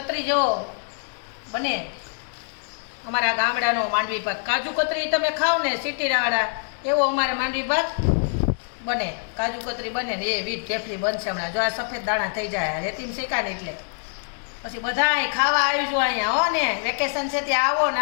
જેવો બને અમારા ગામડાનો માંડવી પાક. કાજુ કતરી તમે ખાઓ ને સિટીવાળા એવો અમારે માંડવી પાક બને. કાજુ કતરી બને ને એ વીટ થેપલી બનશે હમણાં. જો આ સફેદ દાણા થઈ જાય રેતીમ શેકાને એટલે પછી બધાય ખાવા આવજો અહીંયા હો ને. વેકેશન છે ત્યાં આવો ને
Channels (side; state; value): right; silent; 62 dB below the other